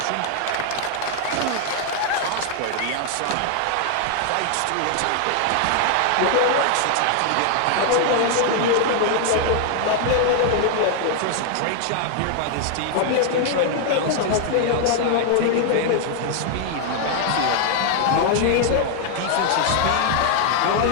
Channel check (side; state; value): both; different; correlation 0.00